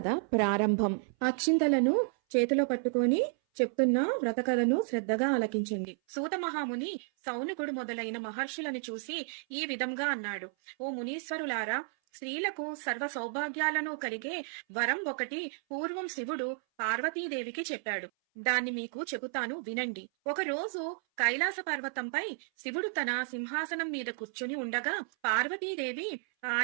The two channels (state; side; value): silent; left; 56 dB below the other